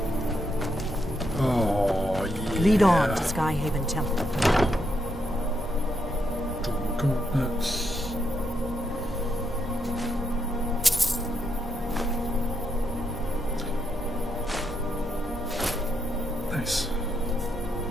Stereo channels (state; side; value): normal; both; correlation 0.79